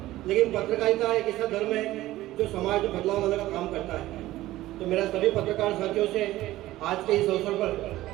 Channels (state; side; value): quieter; left; 16.0 dB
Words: लेकिन पत्रकारिता एक ऐसा धर्म है जो समाज में बदलाव लाने का काम करता है। तो मेरा सभी पत्रकार साथियों से आज के इस अवसर पर